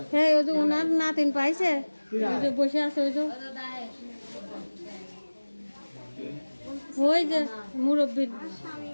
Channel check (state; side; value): inverted; both; correlation -1.00